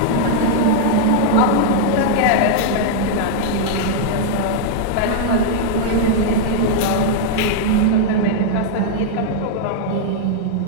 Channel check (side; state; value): both; different; correlation -0.01